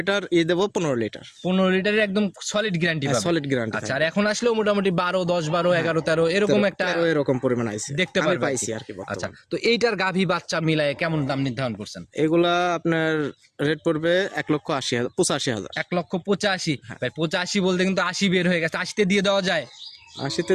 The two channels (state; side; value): identical; both; correlation 1.00